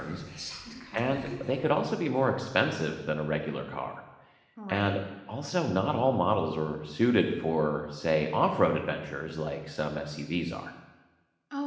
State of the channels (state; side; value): identical; both; correlation 1.00